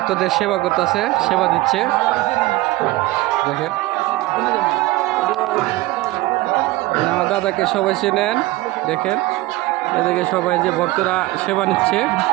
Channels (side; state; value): left; quieter; 18.9 dB